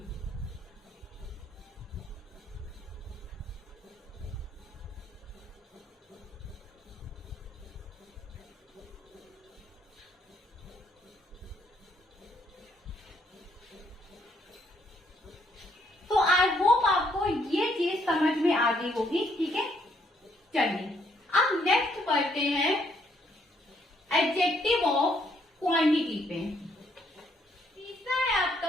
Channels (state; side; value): normal; both; correlation 0.70